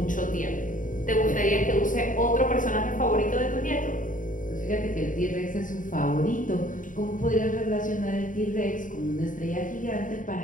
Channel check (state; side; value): late; right; 0.38 ms